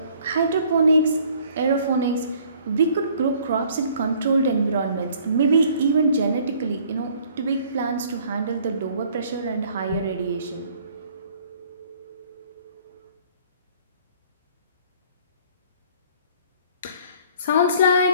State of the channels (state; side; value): inverted; both; correlation -0.57